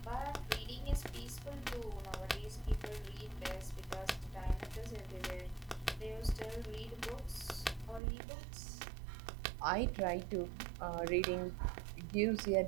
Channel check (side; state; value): left; drops out; at 8.0 s